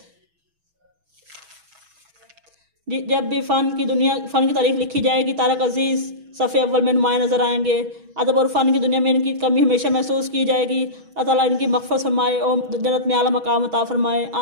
जब भी फ़न की तारीख लिखी जाएगी तारक अजीज़ सफ़े अव्वल में नुमाया नज़र आएंगे। अदब और फ़न की दुनिया में इनकी कमी हमेशा महसूस की जाएगी। अल्लाह ताला इनकी मग़फ़िरत फरमाए और जन्नत में आला मकाम अता फरमाए।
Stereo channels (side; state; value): left; late; 6.2 ms